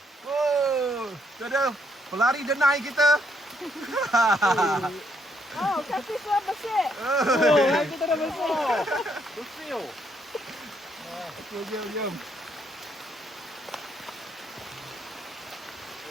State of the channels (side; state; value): both; normal; correlation 0.73